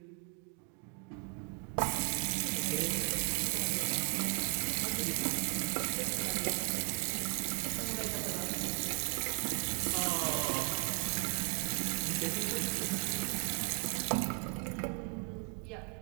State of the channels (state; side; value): quieter; left; 37.5 dB